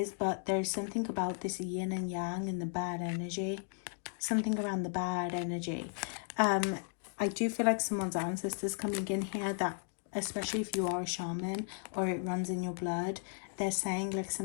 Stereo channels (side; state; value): right; silent; 54 dB below the other